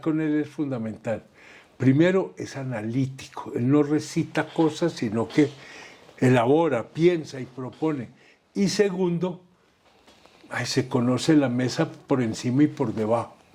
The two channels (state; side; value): identical; both; correlation 1.00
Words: con él es fundamental. Primero, es analítico, él no recita cosas, sino que elabora, piensa y propone. Y segundo, se conoce la mesa por encima y por debajo.